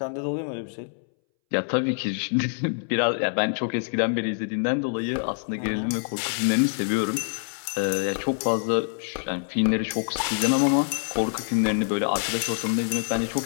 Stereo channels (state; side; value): silent; right; 61 dB below the other